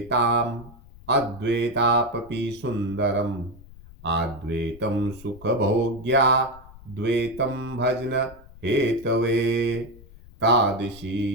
अद्वैतापि सुंदरम अद्वैतम सुख भोग्या द्वैतम भजन हेतवे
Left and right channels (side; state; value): left; noise; rumble, 20 dB below the sound